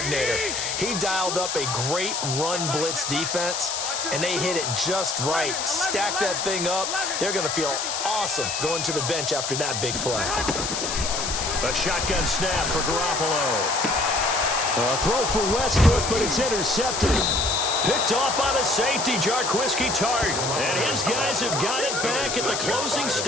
He dialed up a great run blitz defense, and they hit it just right. Stack that thing up. They're going to feel awesome going to the bench after that big play. A shotgun snap for Garoppolo. A throw for Westbrook, but it's intercepted. Picked off by the safety, Jarquiski Tart. And his guys have got it back at the closing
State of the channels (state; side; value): noise; left; hiss, 3 dB below the sound